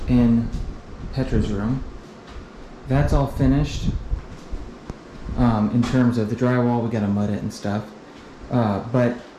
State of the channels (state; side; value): identical; both; correlation 1.00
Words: in Petra's room. That's all finished. In terms of the drywall, we gotta mud it and stuff. But